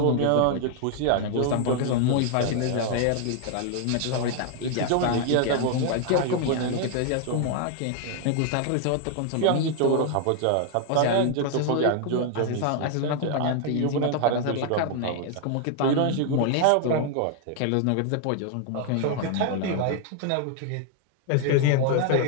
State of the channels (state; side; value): different; both; correlation 0.00